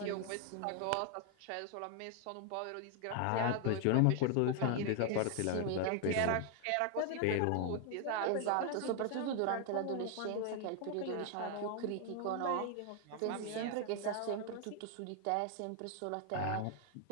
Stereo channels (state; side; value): different; both; correlation 0.00